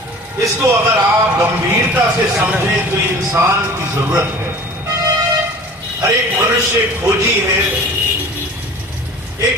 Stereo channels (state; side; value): normal; both; correlation 0.42